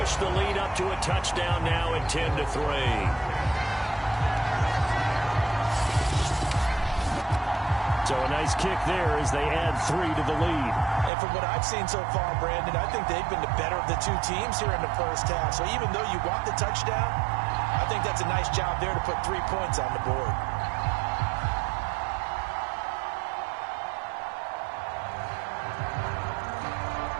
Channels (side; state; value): left; drops out; at 11.1 s